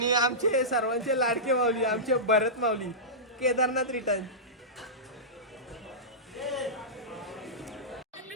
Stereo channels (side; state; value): both; normal; correlation -0.16